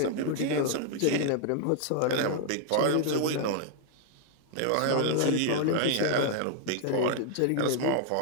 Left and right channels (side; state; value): both; different; correlation 0.00